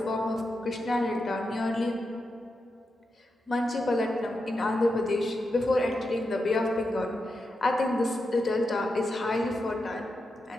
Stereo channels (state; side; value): normal; both; correlation 0.87